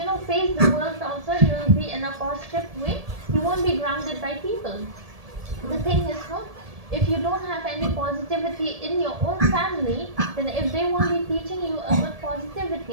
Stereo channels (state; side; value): late; left; 1.7 ms